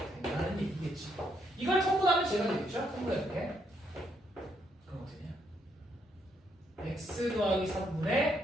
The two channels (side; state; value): both; normal; correlation 0.74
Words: 된다는 얘기겠지. 이걸 통분하면 제가 되겠죠? 통분해볼게. 그럼 어떻게 되냐? x 더하기